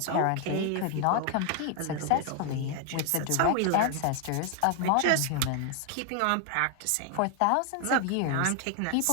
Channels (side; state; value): both; different; correlation 0.00